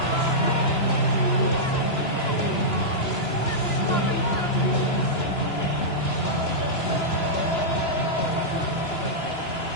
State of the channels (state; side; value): late; right; 2.9 ms